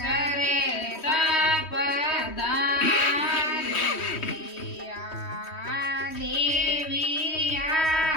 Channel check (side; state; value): right; late; 3.1 ms